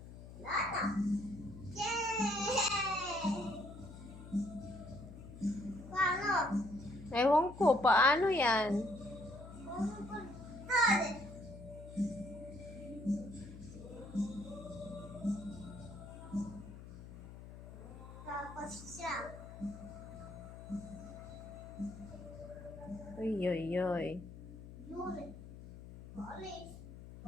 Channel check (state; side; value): noise; left; hum, 14 dB below the sound